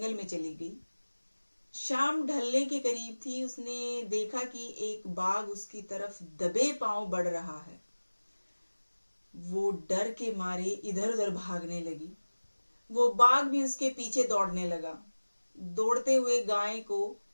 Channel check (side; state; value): both; inverted; correlation -1.00